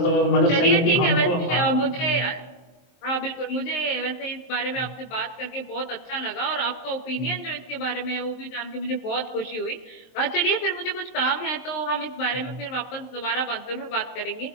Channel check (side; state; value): right; late; 23 ms